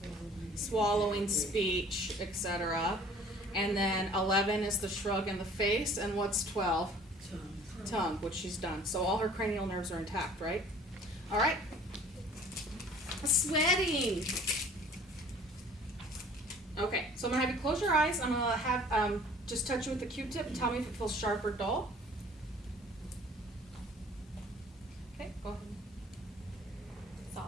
swallowing, speech, etc. And then 11 is the shrug in the face, and what's 12? Tongue, which she's done. So all her cranial nerves are intact, right? All right. Sweating. Okay, so I'm gonna have you close your eyes. I'm gonna have just touch you with the Q-tip and tell me if it feels sharp or dull. Okay, go ahead.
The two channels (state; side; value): normal; both; correlation 0.51